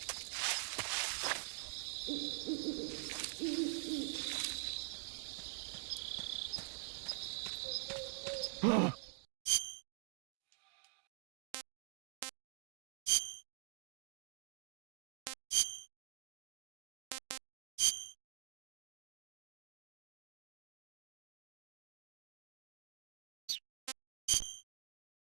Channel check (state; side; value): silent; left; digital silence